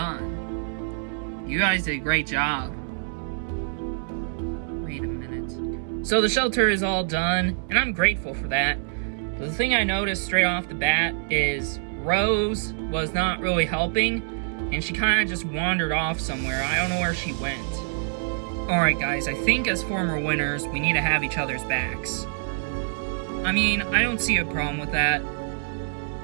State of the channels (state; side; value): silent; left; 61 dB below the other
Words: You guys did a great job. Wait a minute. So the shelter is all done, and I'm grateful for that. But the thing I noticed straight off the bat is Rose was not really helping, and she kind of just wandered off somewhere. I don't know where she went. Alright guys, I think as former winners, we need to have each other's backs. I mean, I don't see a problem with that.